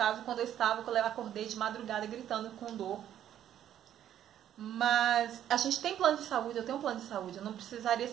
quando eu acordei de madrugada gritando com dor. Mas a gente tem plano de saúde, eu tenho um plano de saúde. Eu não precisaria,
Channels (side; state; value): left; quieter; 10.9 dB